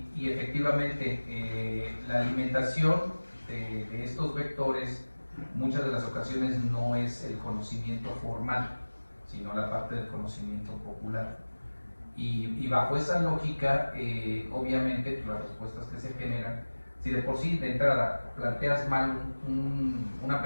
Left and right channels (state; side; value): inverted; both; correlation -1.00